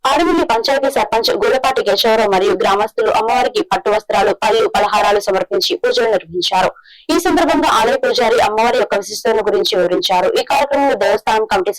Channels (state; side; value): identical; both; correlation 1.00